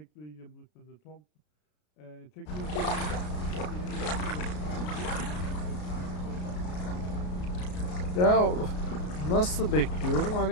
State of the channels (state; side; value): late; right; 33 ms